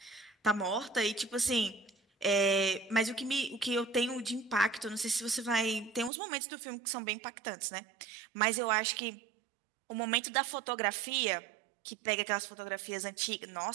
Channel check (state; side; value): drops out; left; at 6.1 s